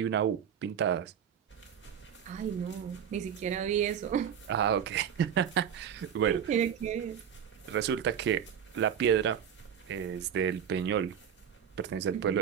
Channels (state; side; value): quieter; left; 8.4 dB